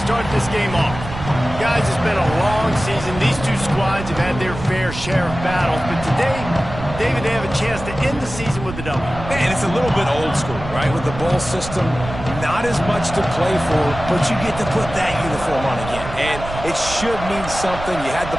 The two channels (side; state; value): right; noise; rumble, 10 dB below the sound